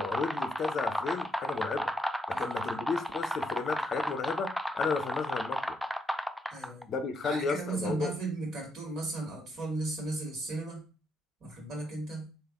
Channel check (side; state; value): both; normal; correlation 0.78